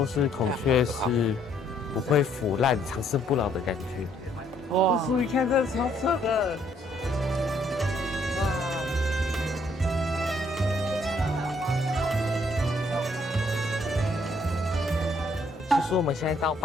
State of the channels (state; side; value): normal; both; correlation 0.67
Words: 是孔雀是不会腐烂、长生不老的感觉。哇！叔，你看这超扯的。哇！据说我们现在到